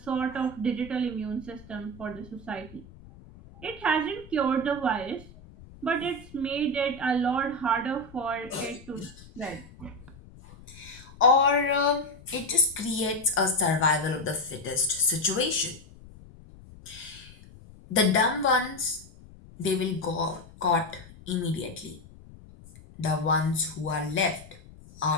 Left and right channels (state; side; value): noise; left; rumble, 20 dB below the sound